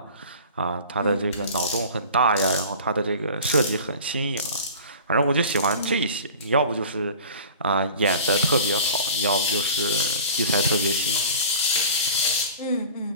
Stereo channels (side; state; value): both; inverted; correlation -0.40